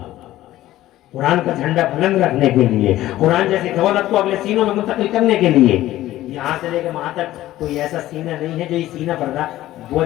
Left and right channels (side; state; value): right; quieter; 14.9 dB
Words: कुरान का झंडा बुलंद रखने के लिए, कुरान जैसी दौलत को अगले सीनों में मुंतकिल करने के लिए। यहाँ से लेकर वहां तक कोई ऐसा सीना नहीं है जो ये सीना